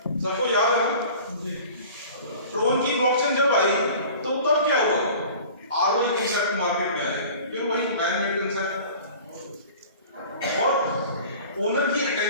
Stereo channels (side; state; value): both; inverted; correlation -0.43